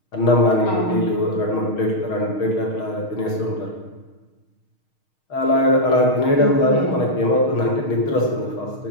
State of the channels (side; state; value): right; late; 6.4 ms